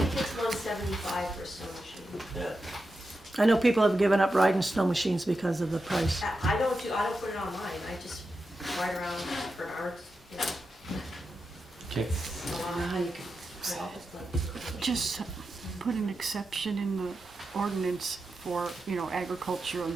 it's 175 for a snow machine. Yeah, I know people have given up riding snow machines because of the price. I don't put it on mine, I just ride around for an hour, you know, Okay. a lot. How you can solve it. Just put an exception in the ordinance for, agriculture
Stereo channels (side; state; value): both; normal; correlation 0.89